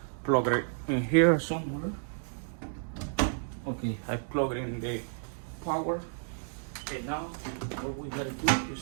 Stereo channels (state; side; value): silent; left; digital silence